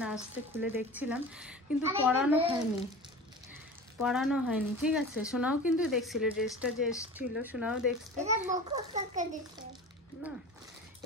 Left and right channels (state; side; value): normal; both; correlation 0.35